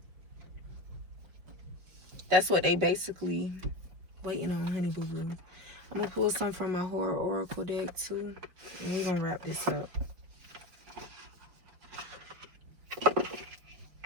That's what they basically waiting on, honey boo boo. I'm gonna pull some from my Horror Oracle deck too, and we're gonna wrap this up.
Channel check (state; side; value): late; left; 5.2 ms